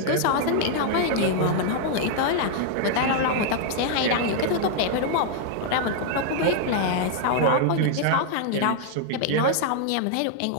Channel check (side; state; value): both; different; correlation -0.01